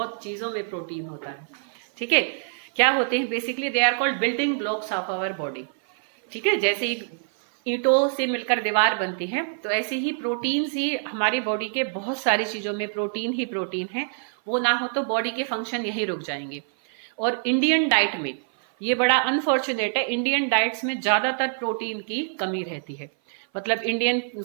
चीजों में प्रोटीन होता है। ठीक है, क्या होते हैं basically? They are called building blocks of our body. ठीक है, जैसे ईंटों से मिलकर दीवार बनती है, तो ऐसे ही प्रोटीन ही हमारी बॉडी के बहुत सारी चीजों में प्रोटीन ही प्रोटीन है। वो ना हो तो बॉडी के फंक्शन यही रुक जाएंगे। और इंडियन डाइट में ये बड़ा अनफॉर्चुनेट है, इंडियन डाइट्स में ज्यादातर प्रोटीन की कमी रहती है। मतलब इंडियन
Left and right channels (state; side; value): silent; left; 57 dB below the other